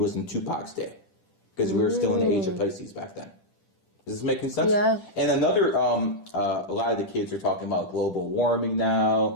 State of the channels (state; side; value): late; right; 10 ms